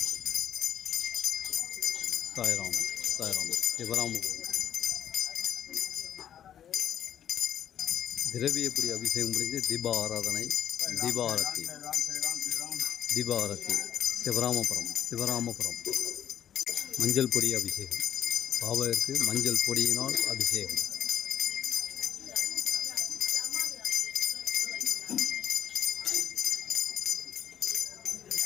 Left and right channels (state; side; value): quieter; right; 9.9 dB